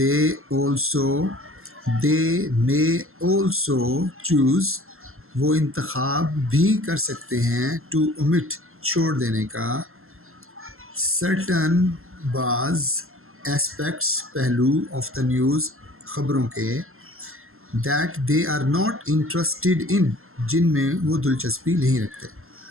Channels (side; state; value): left; late; 0.62 ms